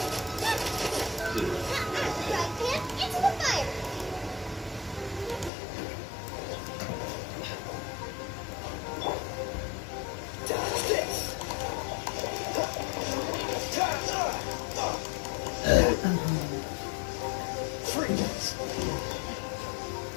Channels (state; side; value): drops out; right; at 5.5 s